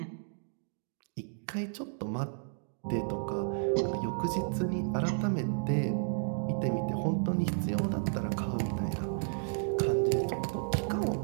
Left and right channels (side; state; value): left; silent; digital silence